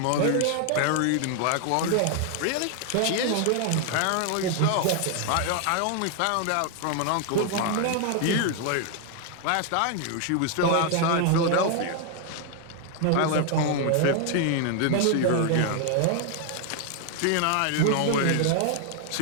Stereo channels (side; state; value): both; different; correlation 0.00